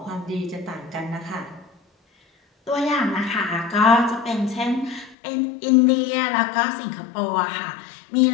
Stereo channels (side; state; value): right; drops out; at 5.2 s